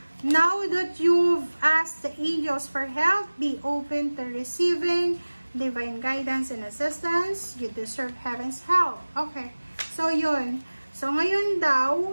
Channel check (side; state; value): both; inverted; correlation -1.00